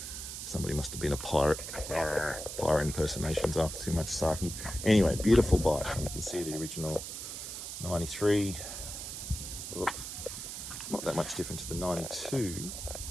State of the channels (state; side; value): noise; right; hiss, 7 dB below the sound